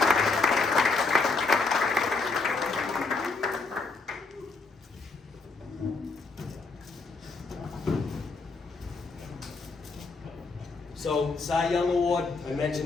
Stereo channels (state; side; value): quieter; right; 4.0 dB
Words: So, Cy Young Award, I